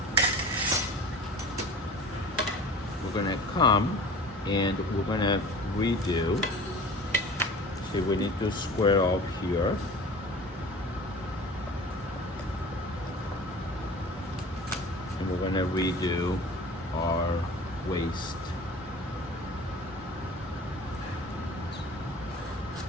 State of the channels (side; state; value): both; normal; correlation 0.40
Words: We're gonna come and we're gonna redo. See, we need to square off here. And we're gonna redo our waist.